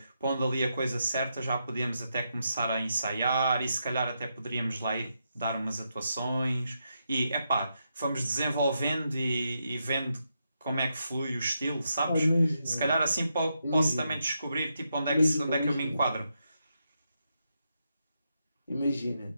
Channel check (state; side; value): inverted; both; correlation -0.83